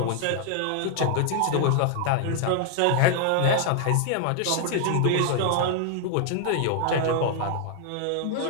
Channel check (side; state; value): both; different; correlation 0.00